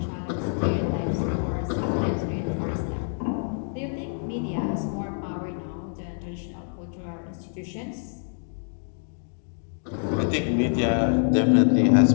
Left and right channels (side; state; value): right; silent; digital silence